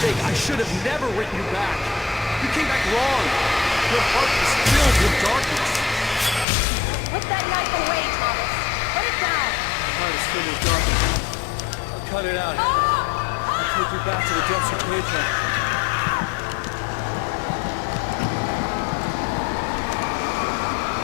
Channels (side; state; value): right; drops out; at 6.5 s